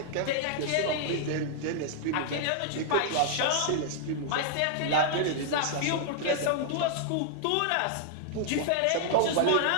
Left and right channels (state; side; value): different; both; correlation -0.01